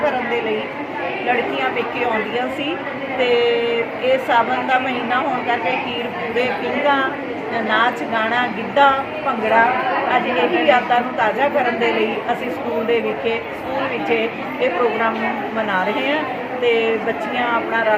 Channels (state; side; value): identical; both; correlation 1.00